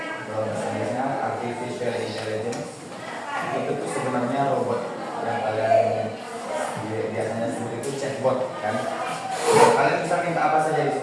kalau bahasa Inggrisnya artificial intelligence. Itu tuh sebenarnya robot yang kalian biasanya sebut itu chatbot, kan? Kalian bisa minta apa saja di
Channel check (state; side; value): identical; both; correlation 1.00